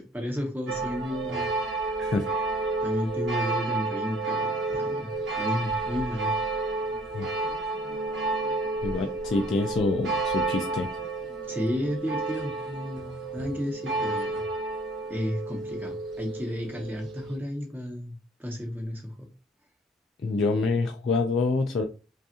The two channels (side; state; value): both; normal; correlation 0.57